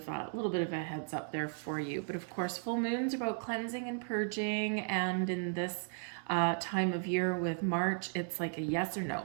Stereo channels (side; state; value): left; silent; 54 dB below the other